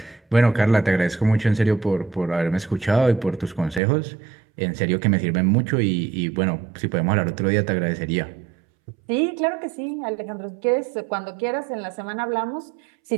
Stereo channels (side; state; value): left; drops out; at 3.8 s